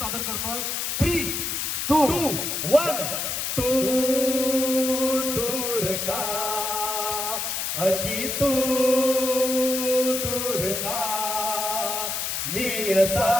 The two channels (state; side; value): noise; left; hiss, 2 dB below the sound